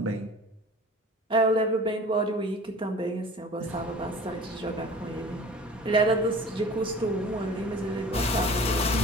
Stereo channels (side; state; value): both; normal; correlation 0.43